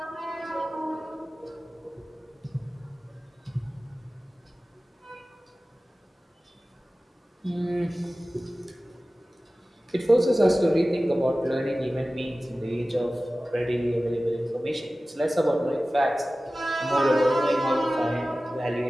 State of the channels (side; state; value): both; normal; correlation 0.96